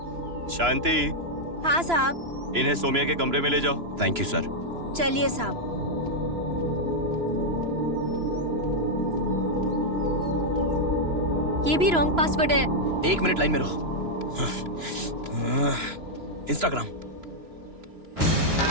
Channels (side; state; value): left; late; 3.0 ms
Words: शांति, हाँ साहब। इन्हें सोमिया के कमरे में ले जाओ। Thank you sir. चलिए साहब। ये भी रॉन्ग पासवर्ड है। 1 मिनट लाइन में रहो। इंस्टाग्राम।